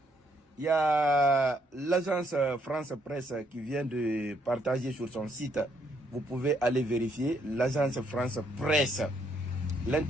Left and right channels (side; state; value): both; normal; correlation 0.72